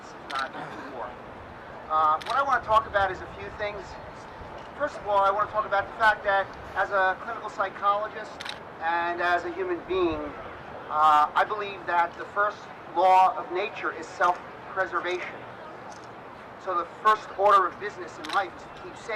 if not 2 more. What I want to talk about is a few things. First of all, I want to talk about the fact that as a clinical psychologist and as a human being, I believe that the first law of nature is self-preservation. So the first order of business in life is to keep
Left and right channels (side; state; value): both; identical; correlation 1.00